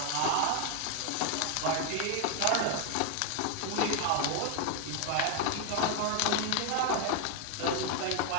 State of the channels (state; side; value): different; both; correlation 0.01